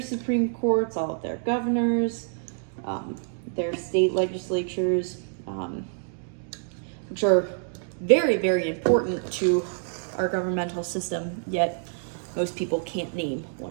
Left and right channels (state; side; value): silent; left; 60 dB below the other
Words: Courts, all of their governors, their state legislatures, which are very, very important to our governmental system, yet most people can't name